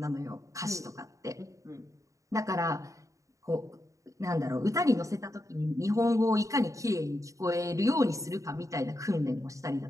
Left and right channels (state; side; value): late; left; 0.16 ms